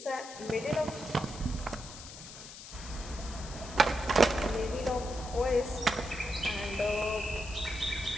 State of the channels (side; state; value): left; noise; hiss, 13 dB below the sound